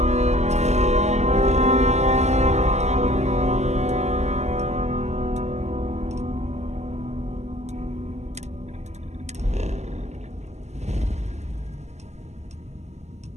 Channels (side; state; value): left; late; 0.33 ms